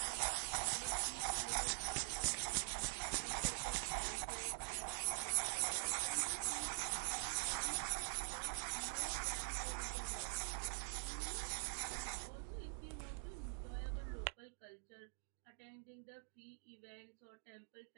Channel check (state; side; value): silent; left; digital silence